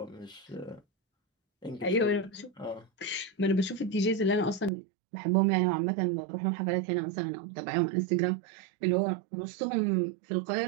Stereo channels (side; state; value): left; drops out; at 4.7 s